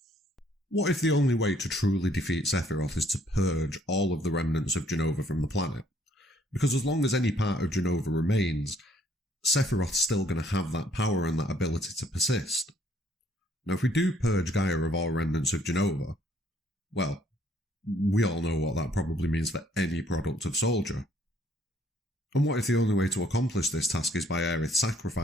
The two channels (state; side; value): normal; both; correlation 0.65